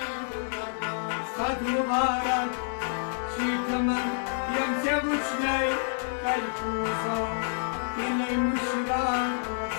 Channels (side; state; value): right; silent; digital silence